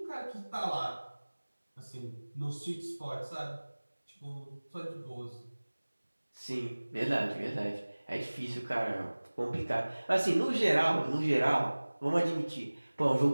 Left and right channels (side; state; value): both; inverted; correlation -1.00